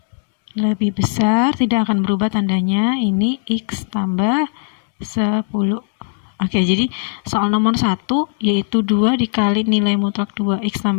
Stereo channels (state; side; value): silent; right; digital silence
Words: Lebih besar, tidak akan berubah tandanya, ini x tambah 10. Oke, jadi soal nomor 1 yaitu 2 dikali nilai mutlak 2x